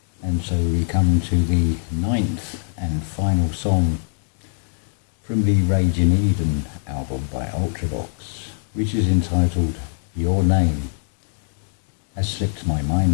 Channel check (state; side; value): silent; right; digital silence